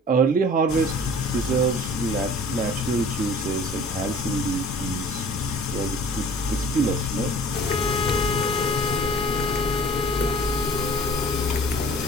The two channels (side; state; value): both; normal; correlation 0.47